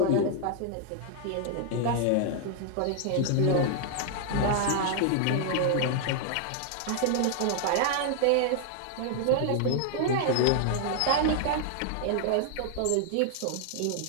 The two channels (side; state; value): both; different; correlation 0.00